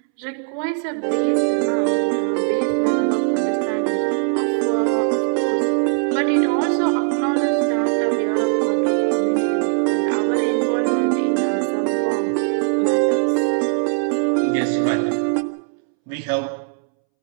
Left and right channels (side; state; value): left; silent; 66 dB below the other